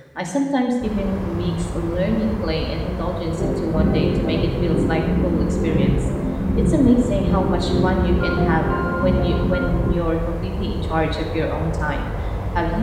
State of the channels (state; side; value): identical; both; correlation 1.00